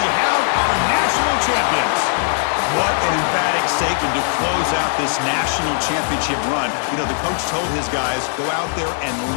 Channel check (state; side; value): silent; right; digital silence